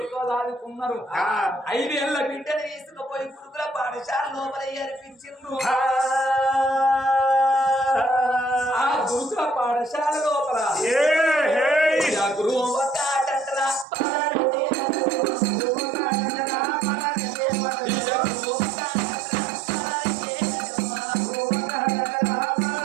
దాదుకున్నారు. 5 ఏళ్ల బిడ్డను తీసుకుపోయి గురుకుల పాఠశాల లోపల అర్పించిండ్రు. ఆ గురుకుల పాఠశాల లోపల గురువు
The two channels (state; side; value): drops out; left; at 13.9 s